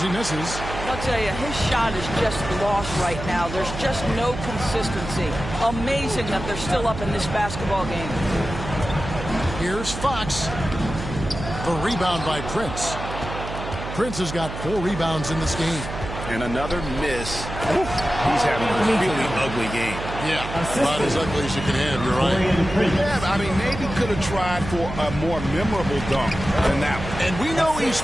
he misses. I'll tell you, his shot is just lost right now. There's just no consistency. Amazing that they're still up in this basketball game. Here's Fox. The rebound by Prince. Prince has got 4 rebounds in this game. And another miss. He's having a really ugly game. Yeah, about as ugly as you can have, you're right. Yeah, I mean, maybe could have tried for a more memorable dunk than that one. And we know he's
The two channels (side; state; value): right; noise; hum, 8 dB below the sound